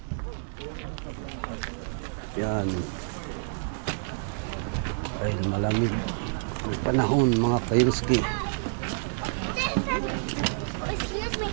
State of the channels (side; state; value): left; silent; digital silence